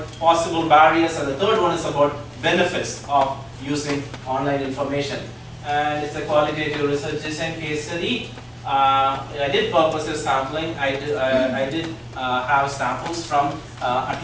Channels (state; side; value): identical; both; correlation 1.00